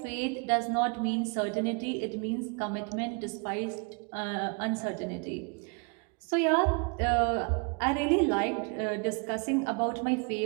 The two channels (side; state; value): left; quieter; 35.0 dB